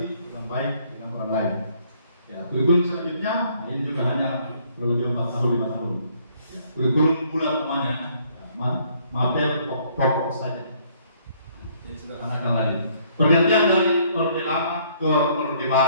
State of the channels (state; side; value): inverted; both; correlation -0.64